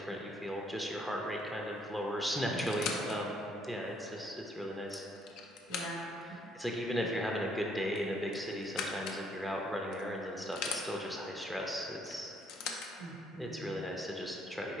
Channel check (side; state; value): both; normal; correlation 0.67